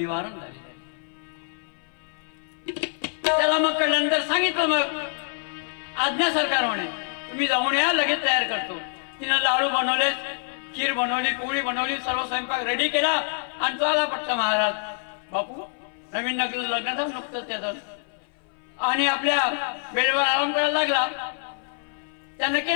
झालेलं आहे. त्याला मग कळल्यानंतर सांगितलं मग आज्ञा सरकार म्हणे तुम्ही जाऊन या, लगेच तयार करतो. तिनं लाडू बनवले, खीर बनवली, पोळी बनवली, सर्व स्वयंपाक रेडी केला आणि तो आला पटकन महाराज. बापू नवीन लग्न झालं नुकतंच त्याचं आणि आपल्या वेळेवर आराम करायला लागला. त्यानं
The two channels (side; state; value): right; silent; 58 dB below the other